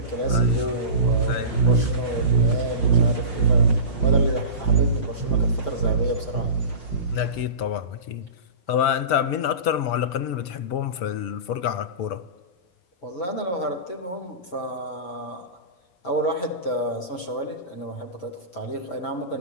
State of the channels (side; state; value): right; late; 5.5 ms